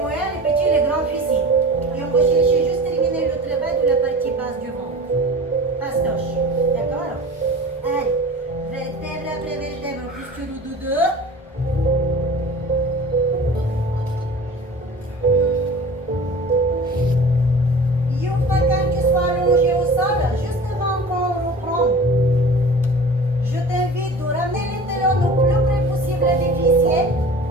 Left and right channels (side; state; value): both; normal; correlation 0.40